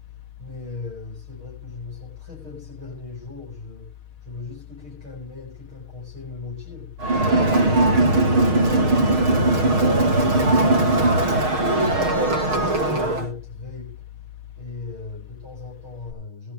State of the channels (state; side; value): late; left; 6.4 ms